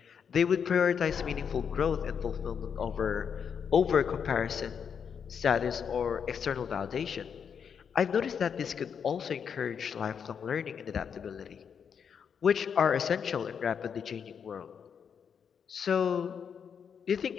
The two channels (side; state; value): right; quieter; 7.1 dB